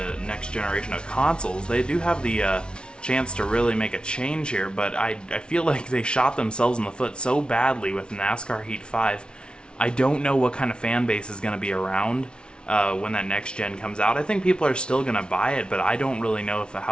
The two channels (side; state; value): right; late; 0.056 ms